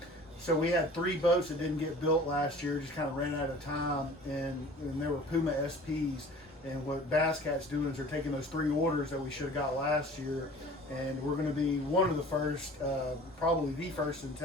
had 3 boats that didn't get built last year, just kind of ran out of time, and there were Puma SPs. And what Basscat's doing is they're taking those 3 orders that we should have got last year, and we're going to be one of the first, probably the first in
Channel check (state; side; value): normal; both; correlation 0.45